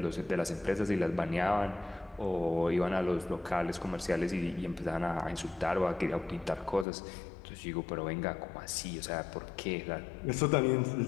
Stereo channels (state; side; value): drops out; right; at 6.9 s